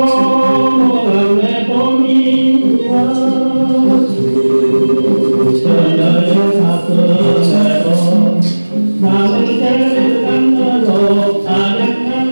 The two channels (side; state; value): both; inverted; correlation -1.00